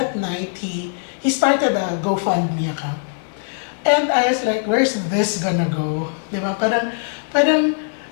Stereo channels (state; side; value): silent; right; digital silence